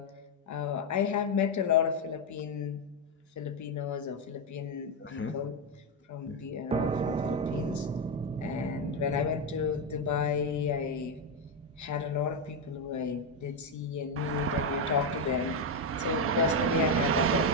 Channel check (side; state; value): both; normal; correlation 0.05